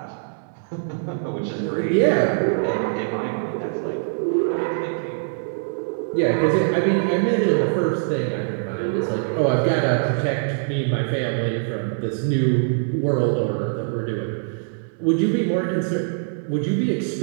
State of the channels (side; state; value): left; silent; 63 dB below the other